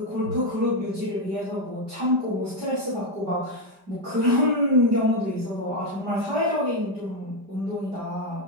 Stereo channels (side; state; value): left; late; 5.1 ms